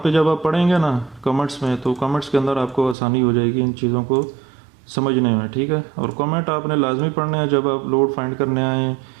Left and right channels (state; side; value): drops out; left; at 3.0 s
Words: जब आप पढ़ेंगे ना कमेंट्स में, तो कमेंट्स के अंदर आपको आसानी हो जाएगी इन चीज़ों को समझने में, ठीक है। और कमेंट आपने लाजमी पढ़ना है, जब आप लोड फाइंड करने आए